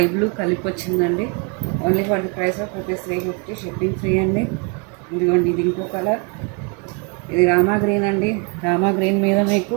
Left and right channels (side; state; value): left; quieter; 33.3 dB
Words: blue కలిపి వచ్చిందండి. Only for the price of ₹350, shipping free అండి. ఇదిగోండి, ఇది ఇంకో కలర్. ఇది రామా గ్రీన్ అండి. రామా గ్రీన్ మీద మీకు